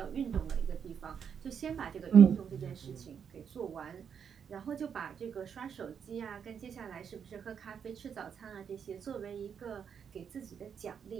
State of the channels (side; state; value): left; quieter; 7.4 dB